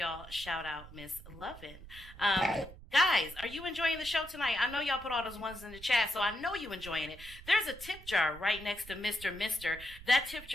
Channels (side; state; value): right; noise; rumble, 16 dB below the sound